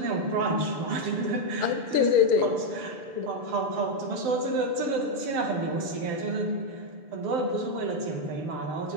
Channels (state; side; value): late; left; 6.8 ms